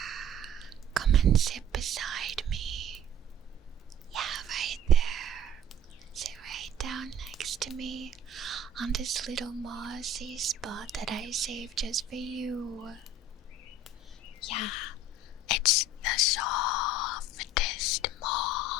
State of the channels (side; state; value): both; normal; correlation 0.47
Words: Come and sit beside me. Yeah, right there. Sit right down next to me on this little mossy spot that I saved just for you. Yeah, it's the softest